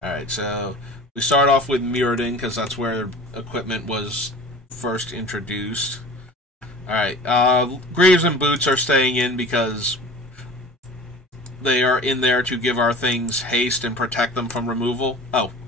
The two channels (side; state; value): both; normal; correlation 0.40